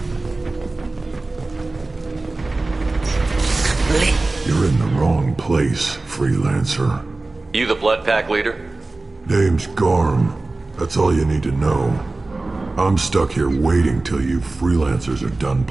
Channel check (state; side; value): quieter; left; 3.2 dB